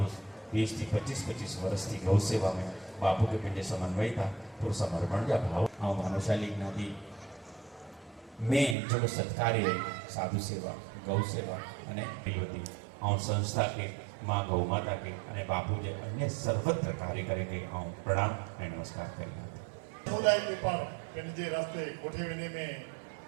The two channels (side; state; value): left; drops out; at 8.8 s